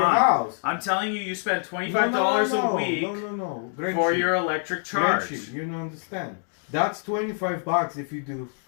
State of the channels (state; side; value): silent; right; 59 dB below the other